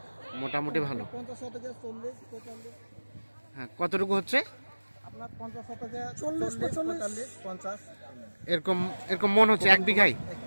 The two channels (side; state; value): both; inverted; correlation -1.00